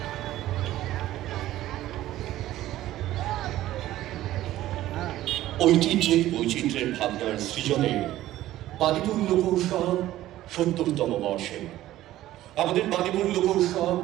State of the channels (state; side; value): quieter; left; 14.5 dB